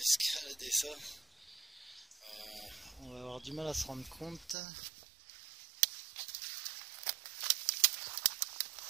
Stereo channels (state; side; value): drops out; left; at 4.5 s